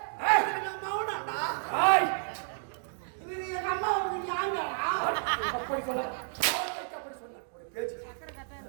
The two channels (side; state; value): left; silent; digital silence